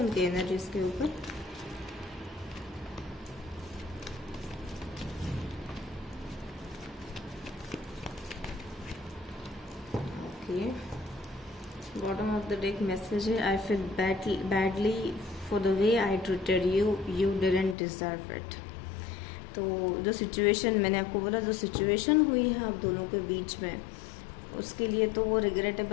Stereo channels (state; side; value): drops out; right; at 17.8 s